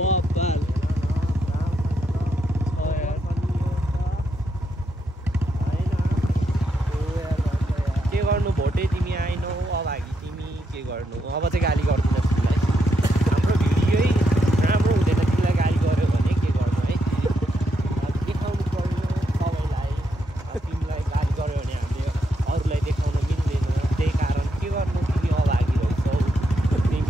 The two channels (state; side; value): normal; both; correlation 0.80